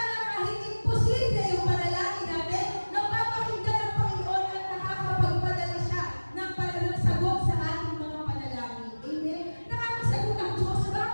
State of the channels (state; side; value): inverted; both; correlation -1.00